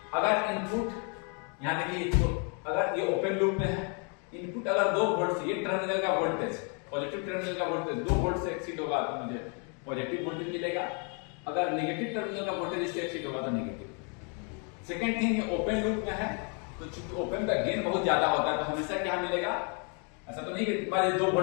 अगर इनपुट यहाँ देखिए, तो अगर ये ओपन लूप में है, इनपुट अगर 2 वोल्ट से, ये टर्मिनल का वोल्टेज, पॉजिटिव टर्मिनल का वोल्टेज 2 वोल्ट से एक्सीड होगा तो मुझे पॉजिटिव वोल्टेज मिलेगा, अगर नेगेटिव टर्मिनल का वोल्टेज इससे एक्सीड होगा तो नेगेटिव। सेकंड थिंग, ये ओपन लूप में है तो चूंकि ओपन का गेन बहुत ज्यादा होता है तो हमेशा क्या मिलेगा, ऐसा तो नहीं कि मान 2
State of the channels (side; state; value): right; quieter; 37.8 dB